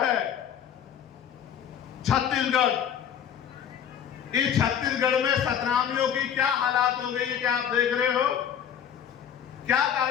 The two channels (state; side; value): quieter; right; 8.9 dB